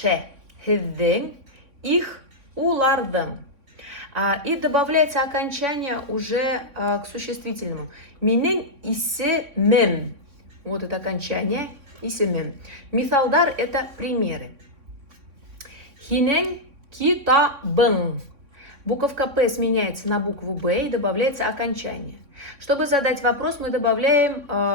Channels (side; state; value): left; late; 3.6 ms